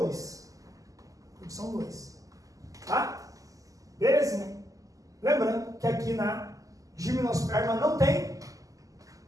dois. Tá? Belezinha. Lembrando que aqui na gimnosperma não tem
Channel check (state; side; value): late; left; 0.17 ms